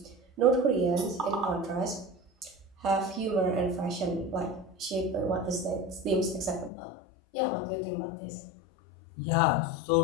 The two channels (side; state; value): right; drops out; at 6.7 s